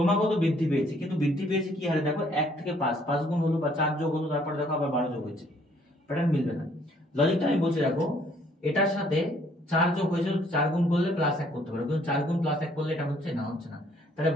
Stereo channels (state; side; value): normal; both; correlation 0.63